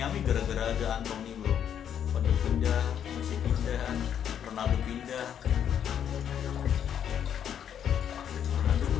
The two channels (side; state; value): right; quieter; 9.1 dB